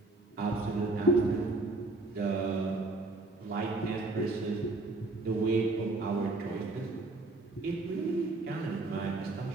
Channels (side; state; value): left; quieter; 3.1 dB